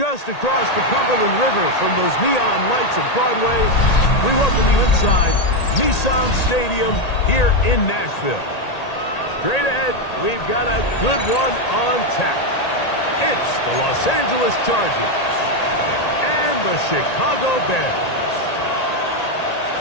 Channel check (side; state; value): right; late; 1.8 ms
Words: across the Cumberland River from those neon lights of Broadway, we welcome you inside Nissan Stadium here in Nashville. Straight ahead, we've got a good one on tap. It's the Los Angeles Chargers and the Chicago Bears.